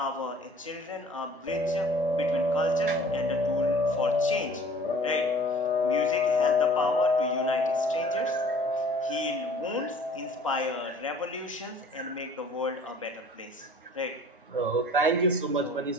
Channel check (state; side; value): normal; both; correlation 0.50